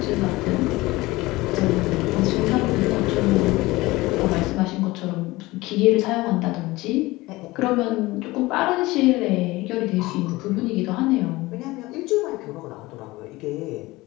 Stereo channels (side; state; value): right; quieter; 20.3 dB